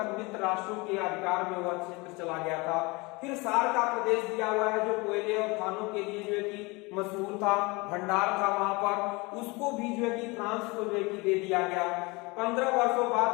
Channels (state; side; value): quieter; right; 25.6 dB